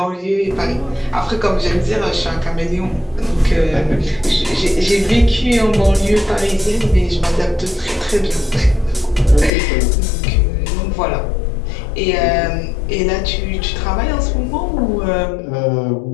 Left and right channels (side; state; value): right; drops out; at 9.5 s